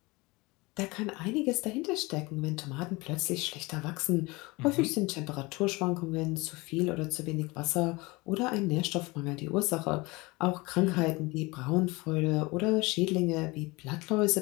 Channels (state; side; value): quieter; right; 23.8 dB